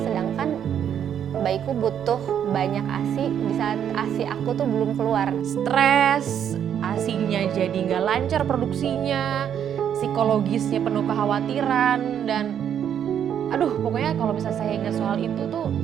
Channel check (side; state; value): left; quieter; 9.1 dB